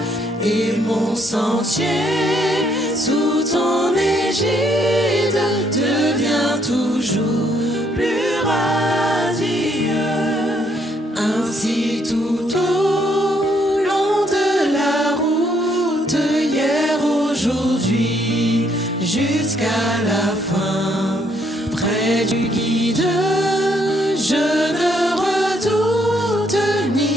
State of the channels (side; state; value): both; normal; correlation 0.70